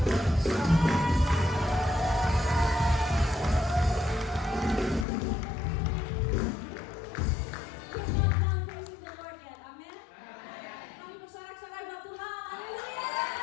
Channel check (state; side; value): drops out; right; at 5.1 s